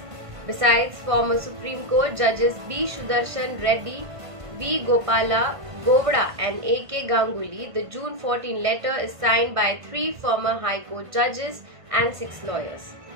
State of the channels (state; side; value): late; left; 1.5 ms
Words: Besides, former Supreme Court judges B. Sudarshan Reddy, V. Gopala Govda and A.K. Ganguly, the June 14 letter is signed by 3 former High Court judges and 6 lawyers.